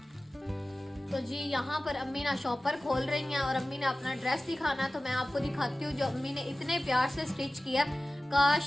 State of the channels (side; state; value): both; normal; correlation 0.97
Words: तो जी यहाँ पर अम्मी ना शॉपर खोल रही हैं और अम्मी ने अपना ड्रेस दिखाना है। तो मैं आपको दिखाती हूँ जो अम्मी ने इतने प्यार से स्टिच किया।